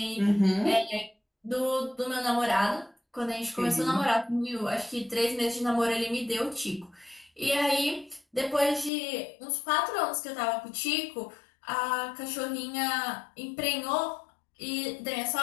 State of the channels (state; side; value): drops out; right; at 8.9 s